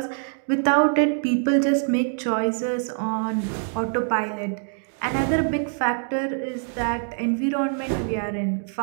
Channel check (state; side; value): silent; left; 56 dB below the other